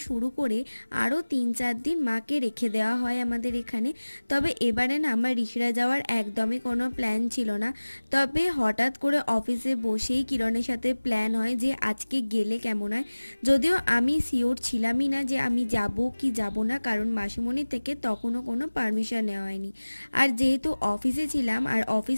শুরু করে আরও 3-4 দিন মাকে রেখে দেওয়া হয় আমাদের এখানে। তবে এবারে না আমার ঋষিরাজ যাওয়ার একদমই কোনো প্ল্যান ছিল না। তবে হঠাৎ করে অফিসে বসেই কিরণের সাথে প্ল্যান হয় যে আজকে গেলে কেমন হয়। যদিও আমি শিওর ছিলামই না যে আমি যাব কি যাব না, কারণ মাসিমণি থেকে তখনও কোনো পারমিশন নেওয়া হয়নি। আর যেহেতু অফিসে ছিলাম আর অফিস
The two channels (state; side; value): inverted; both; correlation -1.00